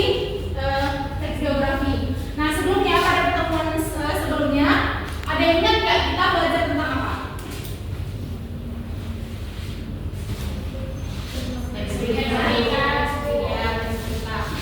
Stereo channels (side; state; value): both; identical; correlation 1.00